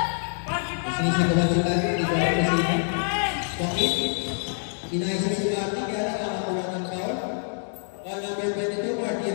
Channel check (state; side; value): silent; right; digital silence